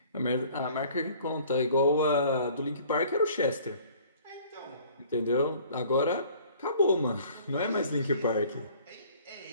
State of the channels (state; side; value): inverted; both; correlation -0.53